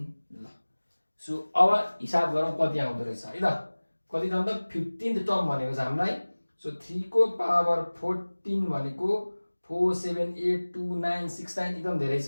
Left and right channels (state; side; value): inverted; both; correlation -1.00